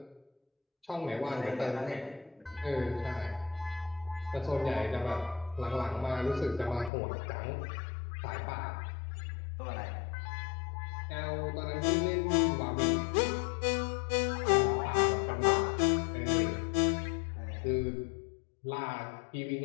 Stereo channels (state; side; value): drops out; right; at 6.9 s